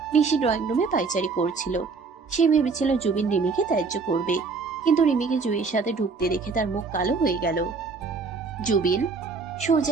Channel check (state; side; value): quieter; left; 4.6 dB